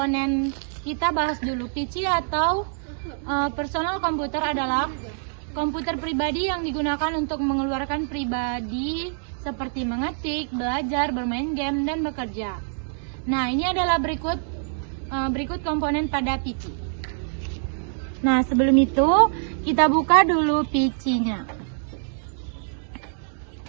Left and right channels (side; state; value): left; silent; 60 dB below the other